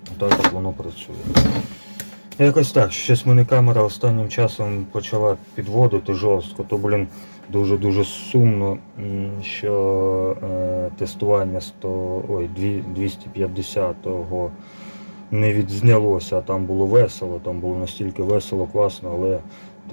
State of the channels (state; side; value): inverted; both; correlation -1.00